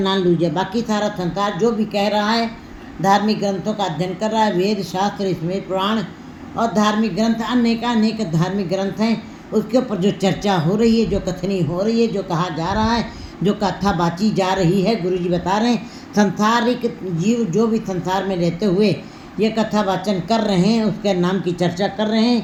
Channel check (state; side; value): identical; both; correlation 1.00